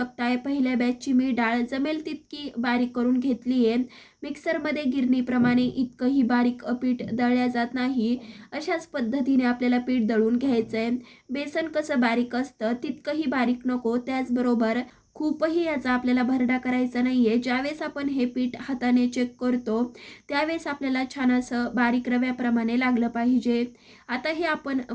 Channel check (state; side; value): identical; both; correlation 1.00